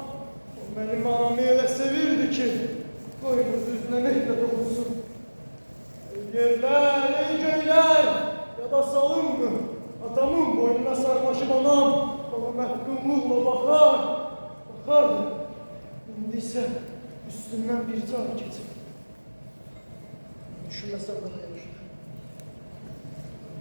benim anamı öyle sevirdi ki, koynuz yüzüne mehmet olsun. Ey yerler, ey göyler, ya da salın mı? Atamın boynuna sarmaşıp anam, bana mehkumluğla bakar, bakardı. İndi ise üstüne üstündən bir can keçib. Düşünməsəm daha yaxşı.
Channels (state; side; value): inverted; both; correlation -1.00